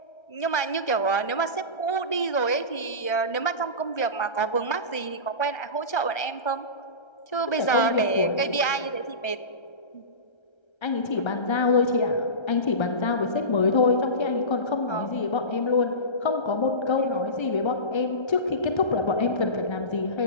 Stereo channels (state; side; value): late; right; 1.3 ms